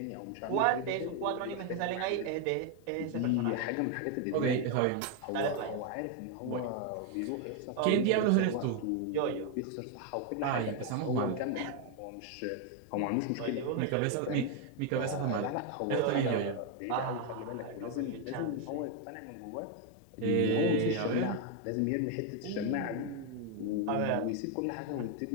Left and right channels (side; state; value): both; different; correlation 0.01